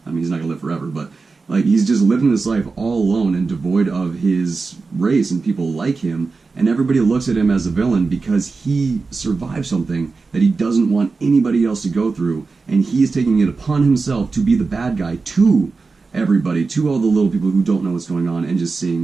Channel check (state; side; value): quieter; left; 4.2 dB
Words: I mean, he's not gonna live forever, but like he's just living this life all alone and devoid of his race and people like him, and everybody looks at him as a villain because he survived something that he doesn't want anybody else to go through, and he is taking it upon himself to be the bad guy to everybody, to all the little people who don't know what's going on and just